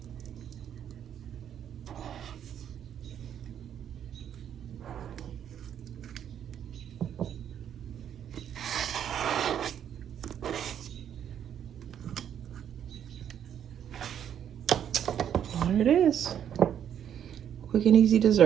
There it is. Quick and easy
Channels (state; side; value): quieter; left; 9.4 dB